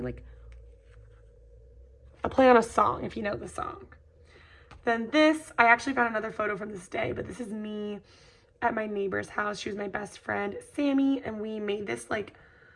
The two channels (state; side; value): identical; both; correlation 1.00